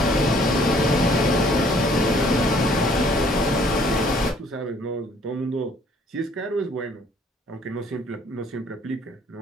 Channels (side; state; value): both; normal; correlation 0.60